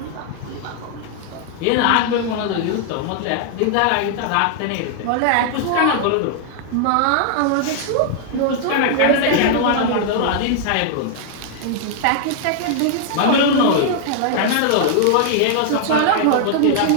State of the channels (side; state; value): both; different; correlation 0.00